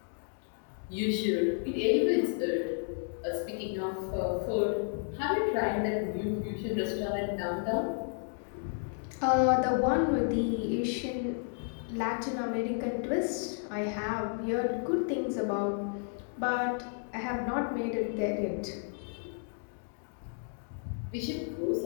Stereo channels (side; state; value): right; silent; 56 dB below the other